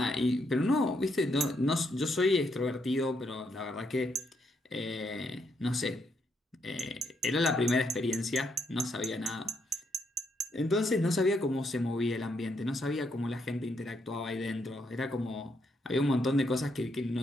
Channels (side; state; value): both; normal; correlation 0.76